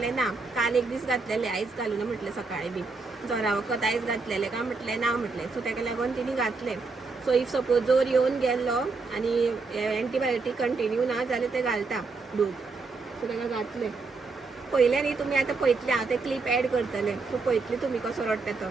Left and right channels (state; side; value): quieter; left; 4.1 dB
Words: ना काल एक दीस घातलेलें आयज घालूना म्हटलें सकाळीं बी. जोरा वखद आयज घातलेलें काय म्हटलें ना म्हटलें. सो ताका लागून तिणी घातलें. सो इफ सपोज जोर येवन गेल्लो आनी एंटीबायोटीक कंटिन्यू ना जाल्यार ते घालता डोस. सो ताका घातलें. पहिले न्ही तुम्ही आता पळयतले हांव ते क्लिप ऍड करतले सो पळयतले तुम्ही कसो रडटा तो